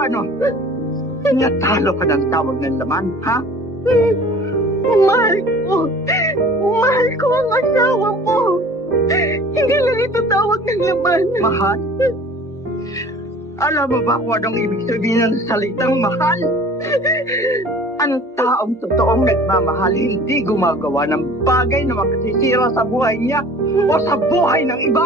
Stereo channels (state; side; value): normal; both; correlation 0.46